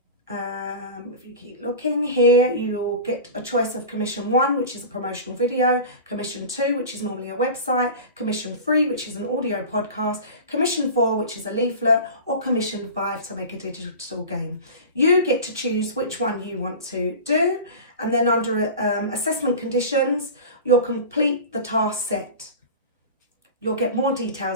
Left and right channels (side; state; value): both; inverted; correlation -0.33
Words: If you keep looking here, you'll get a choice of commission 1, which is a promotional video, commission 2, which is normally a website, commission 3, which is an audio podcast, commission 4, which is a leaflet, or commission 5 to make a digital game. You get to choose which one you want to do, and then under assessment conditions, you'll complete the task set. You'll get more